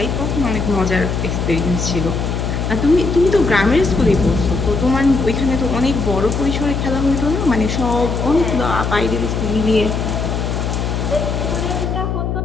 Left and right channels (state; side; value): noise; left; hum, 1 dB below the sound